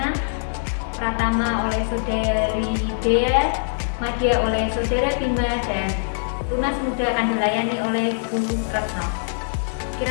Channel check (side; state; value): right; silent; 64 dB below the other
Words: Pratama oleh Saudari Dea, Madya oleh Saudara Bima, dan Tunas Muda akan dilayani oleh Bu Retno.